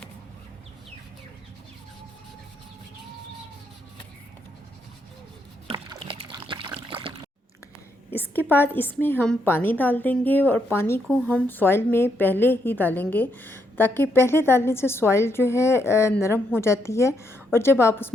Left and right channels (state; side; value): normal; both; correlation 0.77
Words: इसके बाद इसमें हम पानी डाल देंगे और पानी को हम सॉइल में पहले ही डालेंगे ताकि पहले डालने से सॉइल जो है नरम हो जाती है और जब आप